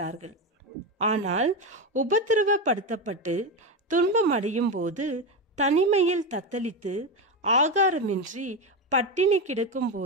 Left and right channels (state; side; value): normal; both; correlation 0.14